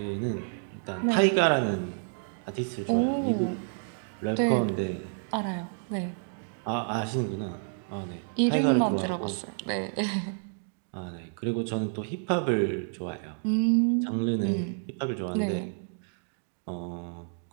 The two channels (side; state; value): left; silent; digital silence